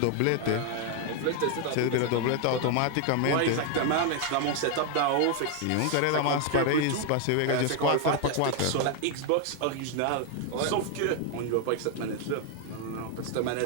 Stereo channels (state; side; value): different; both; correlation 0.00